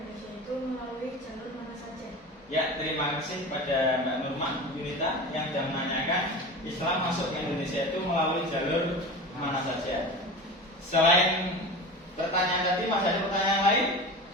itu melalui jalur mana saja? Ya, terima kasih pada Mbak Nurman, Bu Yunita yang sudah menanyakan Islam masuk ke Indonesia itu melalui jalur mana saja. Selain pertanyaan tadi, masih ada pertanyaan lain?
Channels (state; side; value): normal; both; correlation 0.31